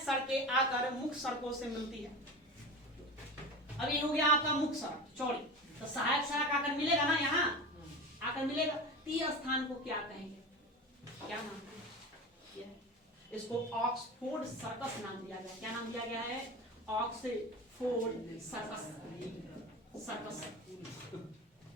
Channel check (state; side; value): normal; both; correlation 0.29